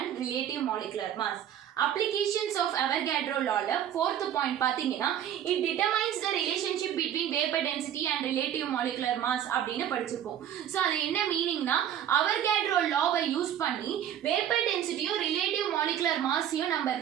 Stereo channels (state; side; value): quieter; left; 10.2 dB